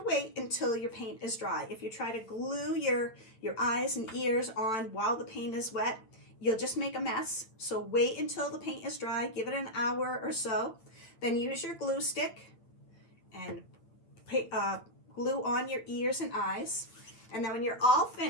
wait until your paint is dry. If you try to glue your eyes and ears on while the paint is wet, you'll just make a mess. So wait until the paint is dry, give it an hour or so. Then use your glue stick and glue on your ears and eyes. And then when you're all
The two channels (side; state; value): right; late; 8.9 ms